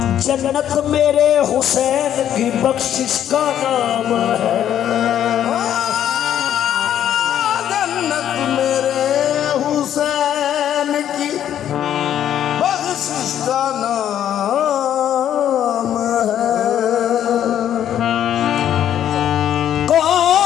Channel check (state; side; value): quieter; right; 10.5 dB